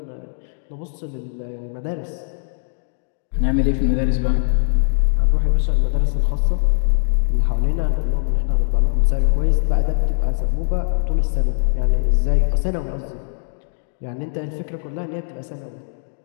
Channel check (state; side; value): silent; right; digital silence